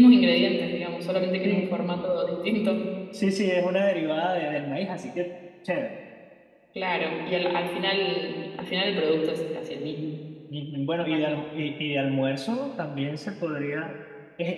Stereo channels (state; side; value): identical; both; correlation 1.00